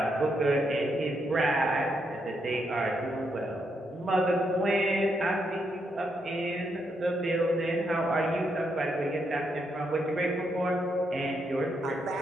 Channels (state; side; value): normal; both; correlation 0.79